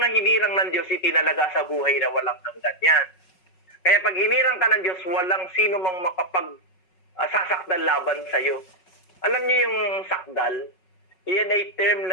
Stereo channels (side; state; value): right; late; 5.4 ms